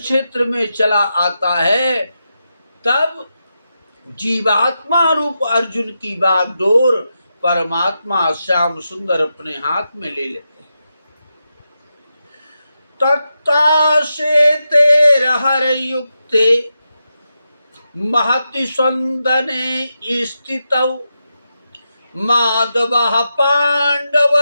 में चला आता है तब जीवात्मा रूप अर्जुन की बागडोर परमात्मा श्याम सुंदर अपने हाथ में ले लेते हैं। तत्ता से तेरहर युक्ते महति संदने स्थितौ माधवः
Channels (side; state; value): both; inverted; correlation -0.87